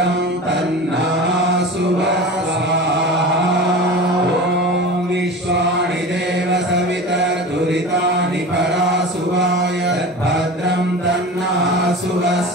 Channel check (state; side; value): normal; both; correlation 0.33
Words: తన్నాసువ ఓం విశ్వాని దేవ సవితర్ధురితాని పరాసువాయ భద్రం తన్నాసువ